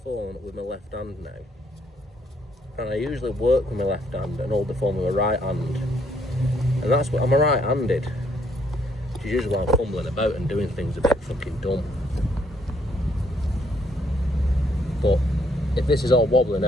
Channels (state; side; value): normal; both; correlation 0.69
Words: with my left hand now. And I usually work with my left hand and hold the phone with my right hand. And that's what, I'm a right-handed. Which is usually why I'm fumbling about and doing things a bit fucking dumb. But if this is all wobbly